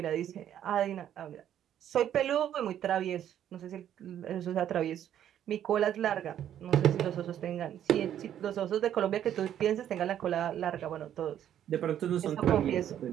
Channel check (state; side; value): quieter; left; 10.5 dB